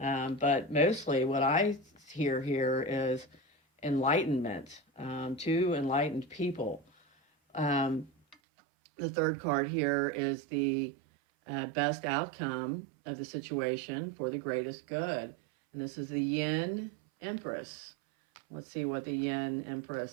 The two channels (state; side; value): drops out; left; at 8.3 s